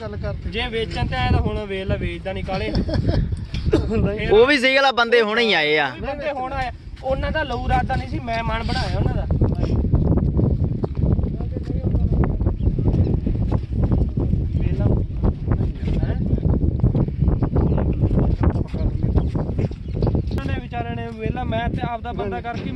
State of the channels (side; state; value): both; identical; correlation 1.00